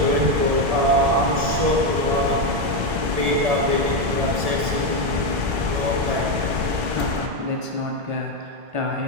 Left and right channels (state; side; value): late; left; 1.7 ms